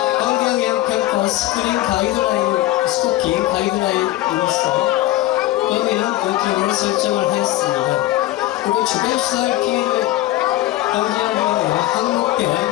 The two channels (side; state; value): right; quieter; 15.9 dB